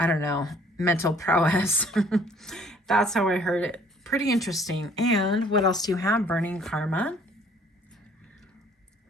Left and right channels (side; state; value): both; normal; correlation 0.58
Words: don't know, mental prowess. That's how I heard it. Pretty interesting. And what else do you have? Burning karma.